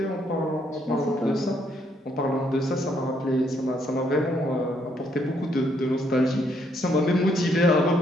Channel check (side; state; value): both; normal; correlation 0.72